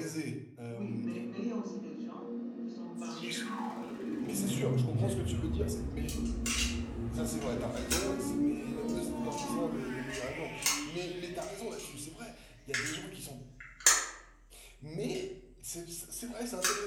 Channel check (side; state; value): both; identical; correlation 1.00